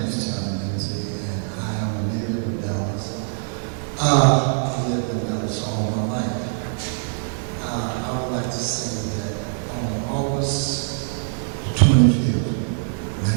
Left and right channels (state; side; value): silent; left; digital silence